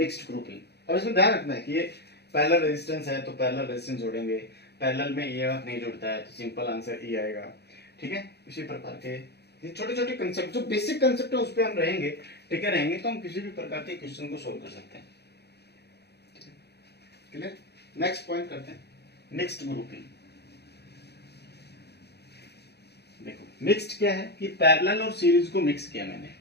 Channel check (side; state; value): right; late; 0.48 ms